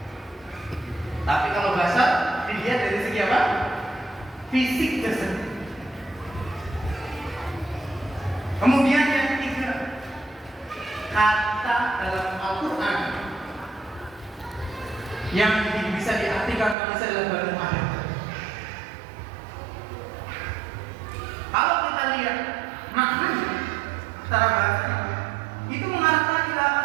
Tapi kalau bahasa dilihat dari segi apa? Fisik jasad. Kemudian yang ketiga, kata dalam Al-Quran yang bisa diartikan manusia adalah Banu Adam. Kalau kita lihat maknanya secara bahasa, itu mengarahkan ila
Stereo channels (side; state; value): left; drops out; at 16.8 s